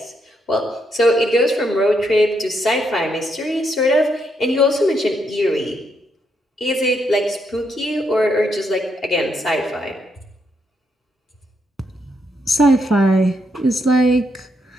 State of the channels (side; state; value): both; normal; correlation 0.77